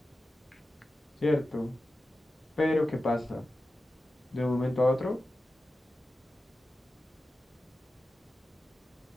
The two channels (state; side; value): normal; both; correlation 0.93